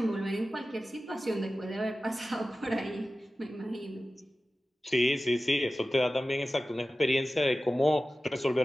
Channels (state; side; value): normal; both; correlation 0.95